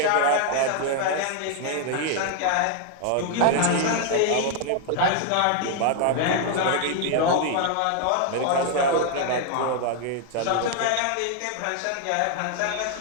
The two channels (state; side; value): different; both; correlation 0.00